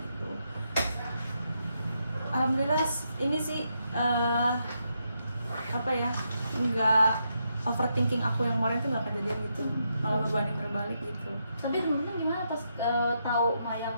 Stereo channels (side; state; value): both; inverted; correlation -0.81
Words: Alhamdulillah ini sih apa ya, nggak overthinking aku yang kemarin tuh nggak kejadian gitu, malah berbanding terbalik gitu. Tapi temen-temen gimana pas tahu